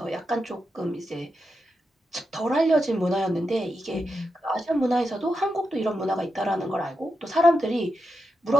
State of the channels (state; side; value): normal; both; correlation 0.86